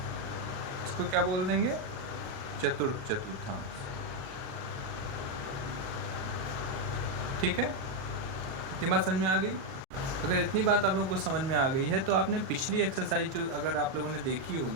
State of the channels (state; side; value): late; left; 37 ms